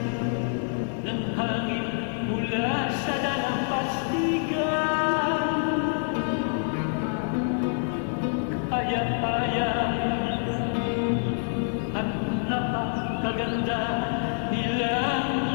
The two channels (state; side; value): silent; right; digital silence